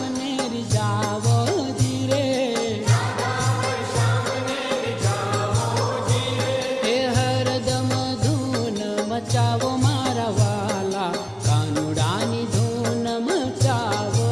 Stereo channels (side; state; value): both; identical; correlation 1.00